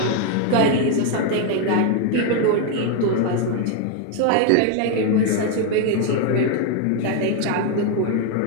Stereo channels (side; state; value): both; different; correlation 0.01